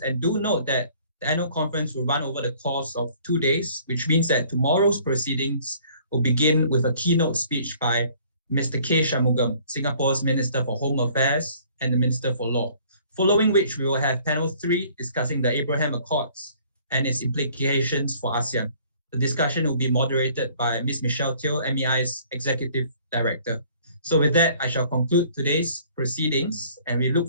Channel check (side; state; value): both; inverted; correlation -0.56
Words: And do note that the annual conference will run over the course of 2 days, which means that tomorrow's proceedings will begin with a keynote speech by Mr. K. Shanmugam, Singapore's Minister for Home Affairs and the Minister for Law, following which we will have panel 3 discussing the Abraham Accords and its implications for ASEAN. The discussion will be moderated by Ms. Michelle Teo, MEI's Executive Director. So with that, I shall conclude today's proceedings, and we look